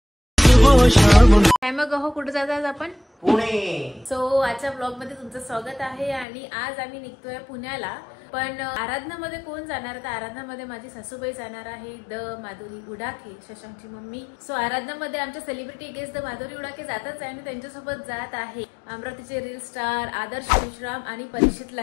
वो शाम। काय मग हो, कुठे जातात आपण? पुणे। सो आजच्या ब्लॉग मध्ये तुमचं स्वागत आहे आणि आज आम्ही निघतोय पुण्याला। पण आराधनामध्ये कोण जाणार? तर आराधनामध्ये माझी सासूबाई जाणार आहे, द माधुरी उडाके, शशांकची मम्मी। सो आराधनामध्ये आमच्या सेलिब्रिटी गेस्ट द माधुरी उडाके जातच आहे आणि त्यांच्यासोबत जात आहे अमरावतीचे रील स्टार आदर्श विश्राम आणि परीक्षित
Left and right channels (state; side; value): drops out; right; at 6.2 s